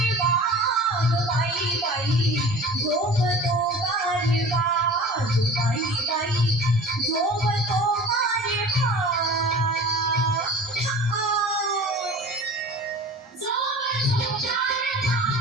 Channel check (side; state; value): both; normal; correlation 0.40